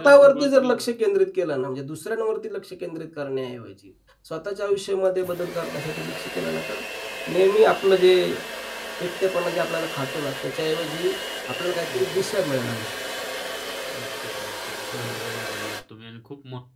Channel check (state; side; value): identical; both; correlation 1.00